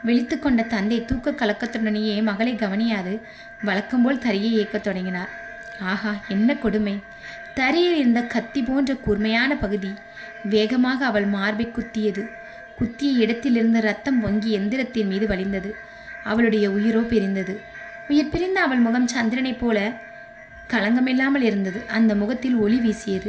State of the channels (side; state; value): both; identical; correlation 1.00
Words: விழித்து கொண்ட தந்தை தூக்க கலக்கத்துடனேயே மகளை கவனியாது வழக்கம்போல் தரையை இயக்கத் தொடங்கினார். ஆஹா, என்ன கொடுமை! தரையில் இருந்த கத்தி போன்ற கூர்மையான பகுதி வேகமாக அவள் மார்பை குத்தியது. குத்திய இடத்திலிருந்து ரத்தம் பொங்கி எந்திரத்தின் மீது வழிந்தது. அவளுடைய உயிரோ பிரிந்தது. உயிர் பிரிந்த அவள் முகம் சந்திரனைப் போல களங்கமில்லாமல் இருந்தது. அந்த முகத்தில் ஒளி